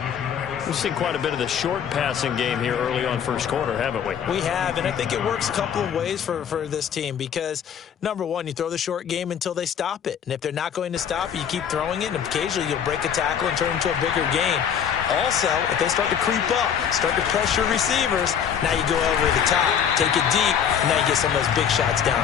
We've seen quite a bit of the short passing game here early on first quarter, haven't we? We have, and I think it works a couple of ways for this team because, number one, you throw the short game until they stop it. And if they're not going to stop it, you keep throwing it, and occasionally you'll break a tackle and turn it into a bigger gain. Also, if they start to creep up, start to pressure receivers, now you go over the top, take it deep, and now you get some of those big shots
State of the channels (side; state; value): right; quieter; 8.2 dB